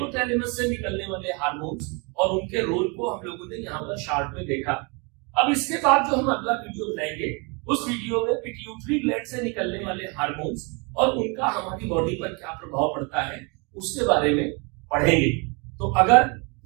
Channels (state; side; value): quieter; left; 31.5 dB